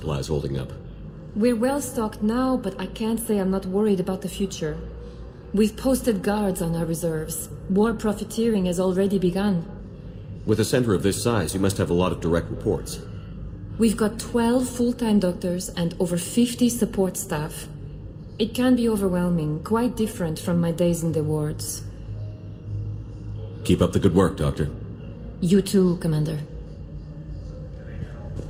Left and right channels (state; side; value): identical; both; correlation 1.00